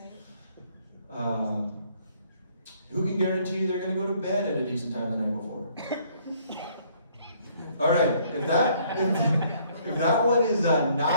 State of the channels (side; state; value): both; inverted; correlation -0.64